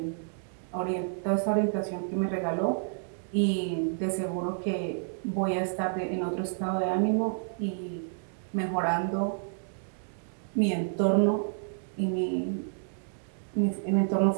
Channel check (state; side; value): silent; left; digital silence